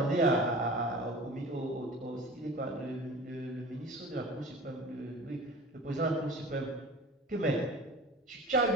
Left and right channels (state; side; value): normal; both; correlation 0.39